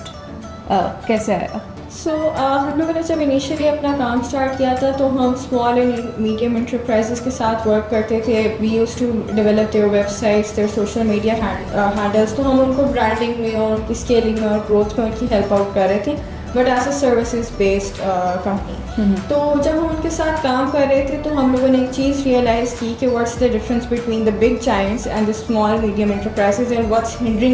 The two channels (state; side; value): identical; both; correlation 1.00